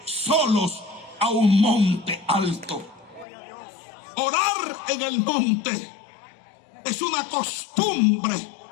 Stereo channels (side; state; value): right; drops out; at 3.2 s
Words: solos, a un monte alto. Orar en el monte es una costumbre